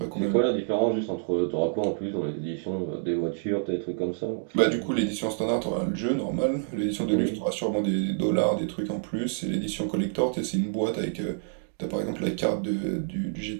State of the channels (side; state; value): left; silent; digital silence